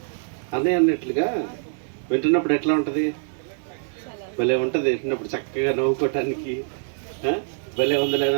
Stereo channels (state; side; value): silent; left; digital silence